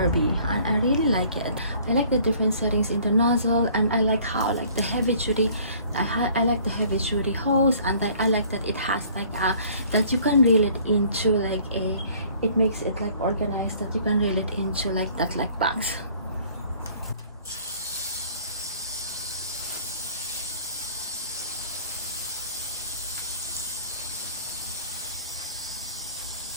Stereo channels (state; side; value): inverted; both; correlation -0.54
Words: and I really like it. I like the different settings in the nozzle, and I like how like the heavy duty, I like the heavy duty hose, and I like that it has like that you can reel it into like it makes it like organized, that you can reel it into like that, like bags.